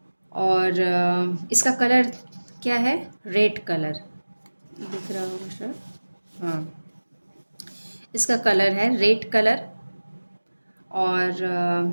और इसका कलर क्या है? रेड कलर दिख रहा होगा सर। हाँ, इसका कलर है रेड कलर।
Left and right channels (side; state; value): both; inverted; correlation -1.00